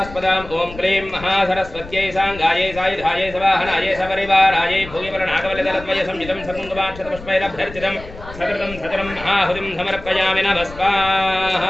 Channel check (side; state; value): left; noise; rumble, 15 dB below the sound